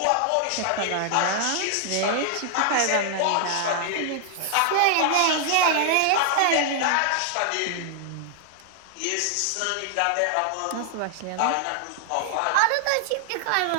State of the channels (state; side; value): different; both; correlation 0.00